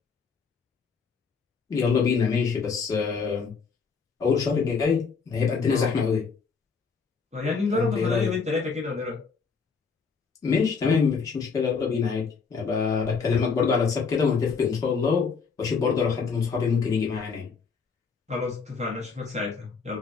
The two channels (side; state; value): right; quieter; 5.3 dB